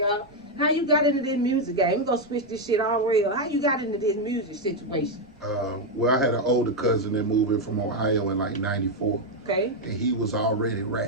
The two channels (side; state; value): right; noise; rumble, 28 dB below the sound